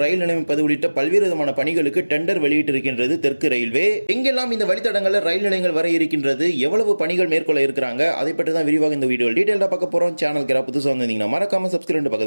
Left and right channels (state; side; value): inverted; both; correlation -1.00